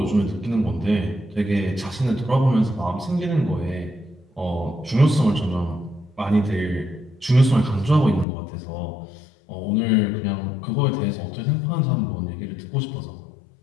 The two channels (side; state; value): right; drops out; at 8.2 s